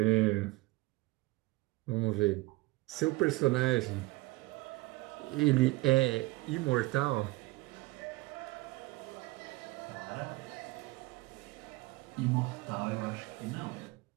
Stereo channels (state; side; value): quieter; left; 21.3 dB